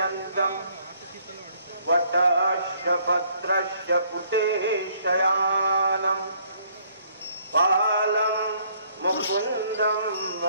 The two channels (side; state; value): both; inverted; correlation -0.64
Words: वटस्य पत्रस्य पुटे शयानं बालं मुकुन्दं